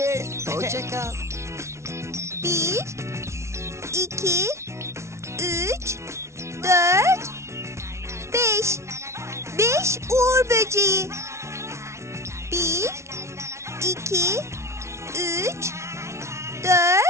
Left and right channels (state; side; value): late; left; 0.13 ms